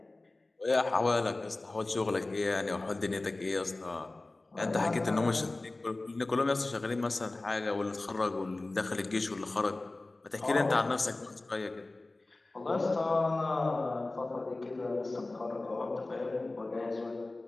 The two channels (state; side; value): quieter; right; 3.0 dB